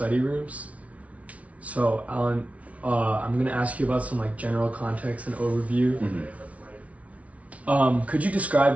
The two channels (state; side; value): late; left; 0.066 ms